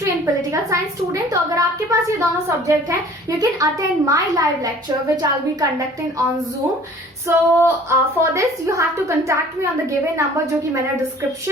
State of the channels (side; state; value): both; normal; correlation 0.50